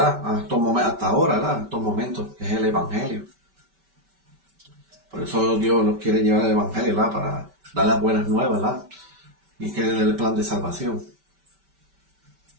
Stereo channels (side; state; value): left; late; 5.2 ms